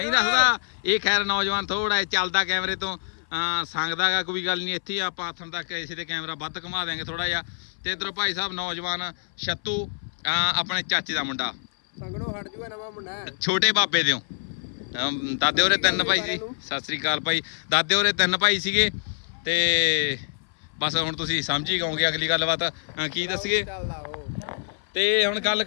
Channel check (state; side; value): silent; right; 58 dB below the other